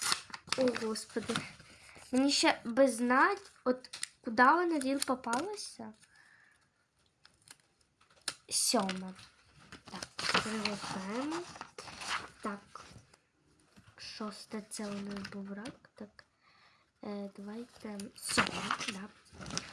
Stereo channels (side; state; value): both; identical; correlation 1.00